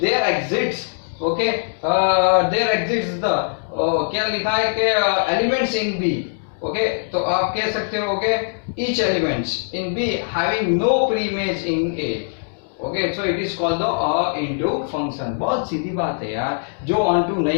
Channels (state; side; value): silent; right; digital silence